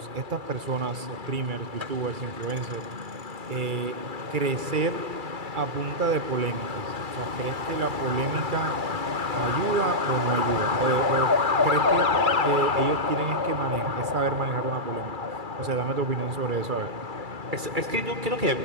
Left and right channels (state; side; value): late; left; 2.3 ms